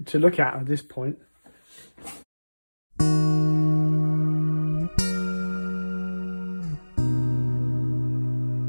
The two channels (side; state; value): both; inverted; correlation -1.00